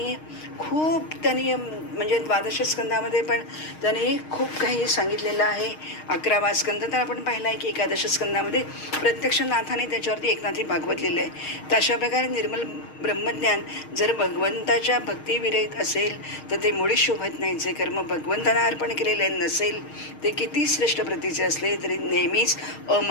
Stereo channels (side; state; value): right; late; 6.4 ms